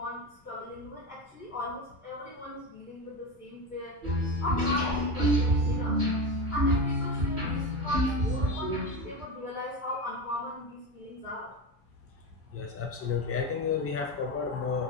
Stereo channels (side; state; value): left; late; 2.3 ms